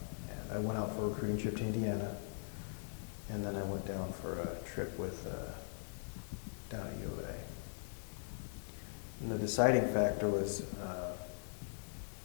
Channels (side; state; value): right; silent; digital silence